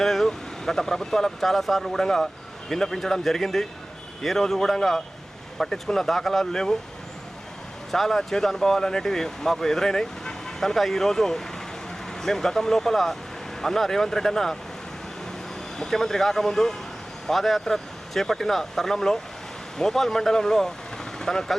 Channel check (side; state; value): both; normal; correlation 0.98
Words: గత ప్రభుత్వాలకు చాలాసార్లు కూడా విన్నపించడం జరిగింది. ఏ రోజు కూడా పట్టించుకున్న దాఖలాలు లేవు. చాలా చేదు అనుభవాలు అనేటివి మాకు ఎదురైనాయి. కనుక ఈరోజు మేము గతం లోపల అన్న రేవంత్ రెడ్డి అన్న ముఖ్యమంత్రి కాకముందు పాదయాత్ర చేపట్టిన తరుణంలో మోపాల్ మండలంలో తనకు